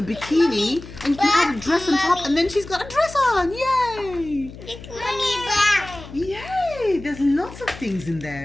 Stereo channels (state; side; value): noise; left; hum, 15 dB below the sound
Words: bikini, and you can add a dress on top, and then she's got a dress on. Yay! Mommy, back. Yay! There's lots of things in